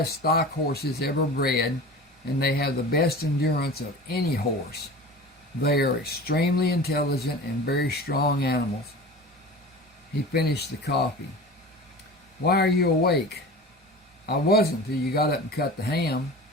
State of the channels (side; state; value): both; normal; correlation 0.36